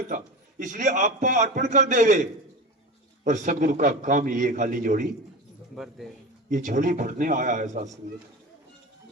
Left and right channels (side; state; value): both; normal; correlation 0.28